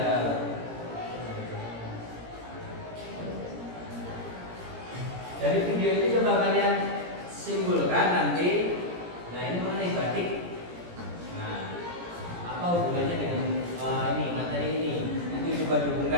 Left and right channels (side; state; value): left; late; 17 ms